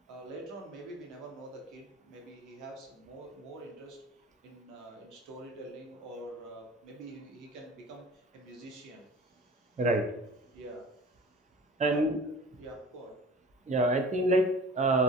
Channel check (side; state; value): both; normal; correlation 0.42